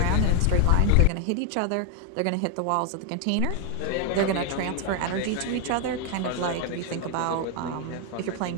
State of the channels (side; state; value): both; different; correlation 0.01